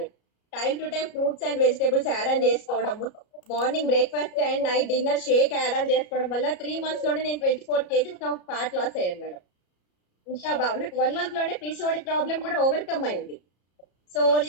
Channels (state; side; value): late; right; 33 ms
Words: Time to time fruits and vegetables add on చేసుకోవడము, morning breakfast and night dinner shake add on చేసుకోవడం వల్ల 3 months లోనే నేను 24 kgs ఆఫ్ ఫ్యాట్ లాస్ అయ్యాను మేడం. ఇంకా బాగా నాకు 1 month లోనే పీసీఓడి ప్రాబ్లం కూడా ఓవర్కమ్ అయింది. సో